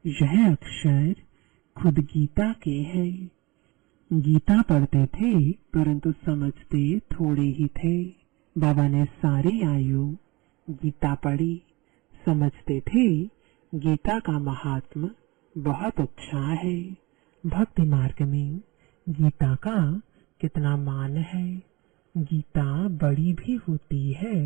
यह अक्षर खुद गीता के हैं। गीता पढ़ते थे परंतु समझते थोड़े ही थे। बाबा ने सारी आयु गीता पढ़ी, समझते थे गीता का महात्मा बहुत अच्छा है। भक्ति मार्ग में गीता का कितना मान है। गीता बड़ी भी होती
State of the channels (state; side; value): quieter; left; 23.3 dB